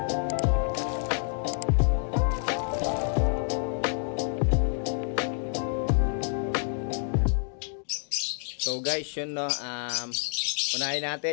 So guys, yun no, unahin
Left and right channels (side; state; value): right; silent; 59 dB below the other